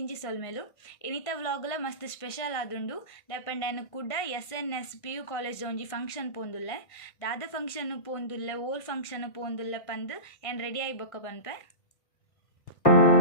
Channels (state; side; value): late; right; 1.6 ms